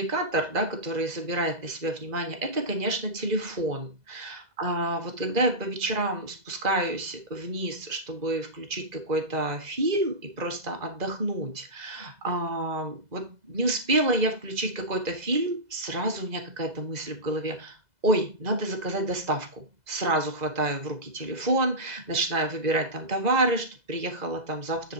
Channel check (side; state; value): left; late; 2.0 ms